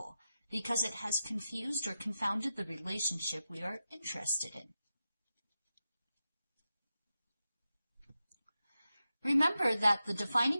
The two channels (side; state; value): both; inverted; correlation -0.91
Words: because it has confused or confounded the relationship we are interested in. Remember that the